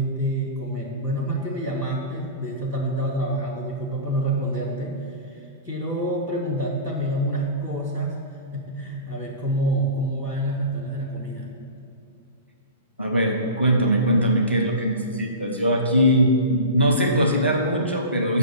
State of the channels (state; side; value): inverted; both; correlation -0.33